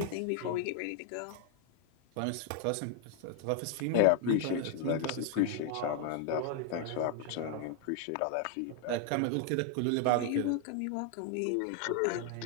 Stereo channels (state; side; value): different; both; correlation 0.00